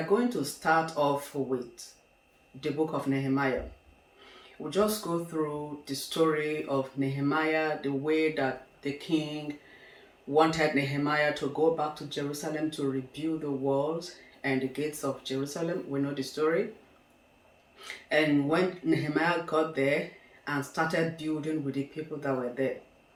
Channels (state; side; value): identical; both; correlation 1.00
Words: going to start off with the book of Nehemiah. We'll just go through the story of Nehemiah, the way that the king wanted Nehemiah to go back to Jerusalem to rebuild the walls and the gates of Jerusalem. We know the story. And when Nehemiah got there and started building with the people that were there,